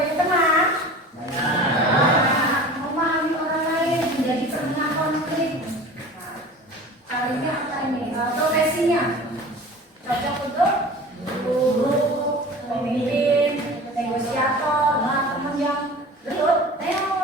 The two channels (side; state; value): both; normal; correlation 0.39